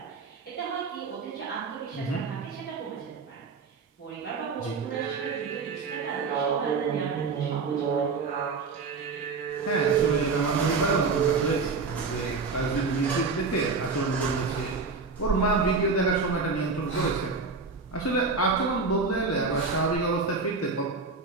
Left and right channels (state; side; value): quieter; left; 4.5 dB